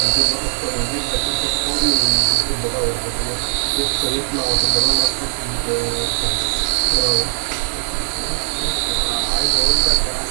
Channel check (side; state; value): left; silent; digital silence